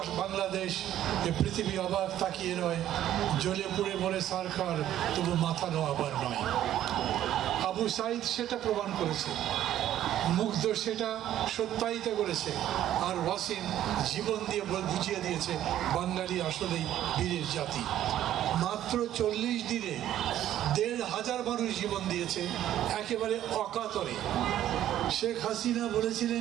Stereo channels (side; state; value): left; quieter; 12.1 dB